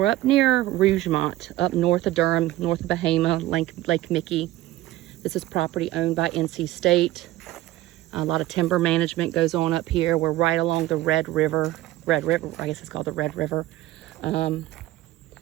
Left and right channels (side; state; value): left; quieter; 16.0 dB